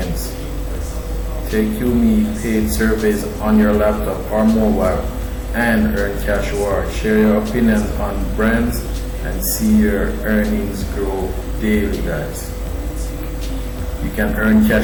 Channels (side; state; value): both; identical; correlation 1.00